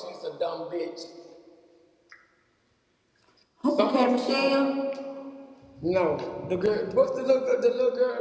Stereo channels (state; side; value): identical; both; correlation 1.00